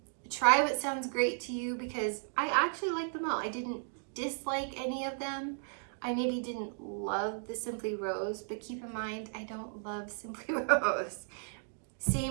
Try what sounds great to you, because I actually like them all. I didn't dislike any of them. I maybe didn't love the Simply Rose, but keep in mind, I don't love Simply Rose.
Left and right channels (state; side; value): silent; left; digital silence